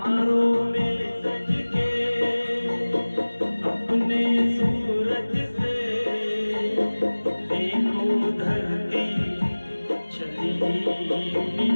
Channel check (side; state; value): both; inverted; correlation -1.00